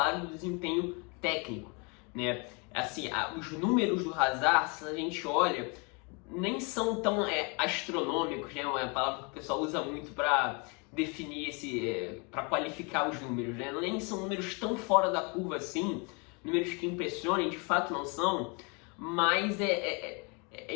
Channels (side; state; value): right; quieter; 31.6 dB